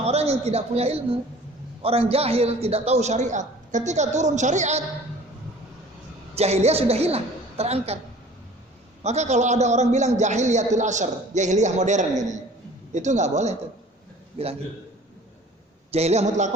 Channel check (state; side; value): normal; both; correlation 0.48